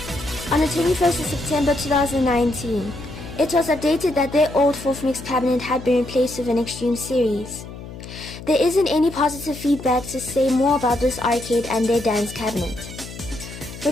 On the 21st of September 2019, it was updated that their old 4th mix cabinet had been replaced with an Extreme series. There isn't any positive feedback to say more about this arcade and their dance cabinet.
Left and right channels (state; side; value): noise; left; hum, 13 dB below the sound